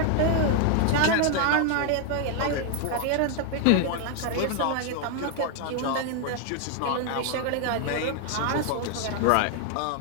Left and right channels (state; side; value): different; both; correlation 0.00